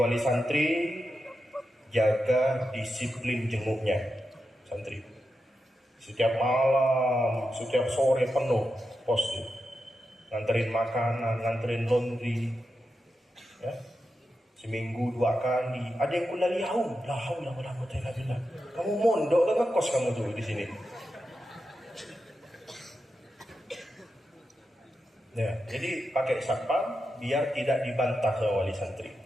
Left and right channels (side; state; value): both; normal; correlation 0.89